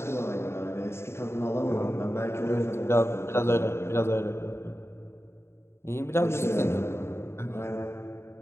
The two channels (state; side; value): late; right; 0.12 ms